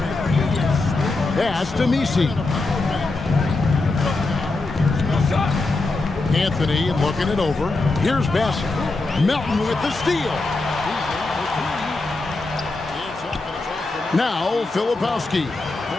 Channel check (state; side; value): quieter; right; 3.3 dB